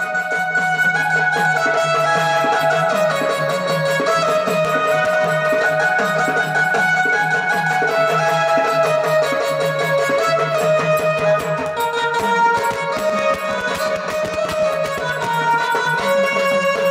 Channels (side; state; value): both; identical; correlation 1.00